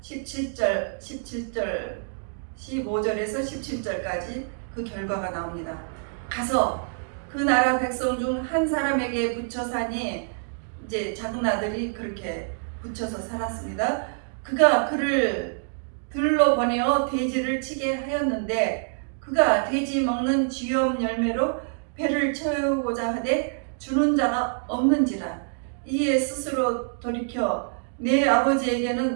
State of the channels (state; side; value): silent; left; digital silence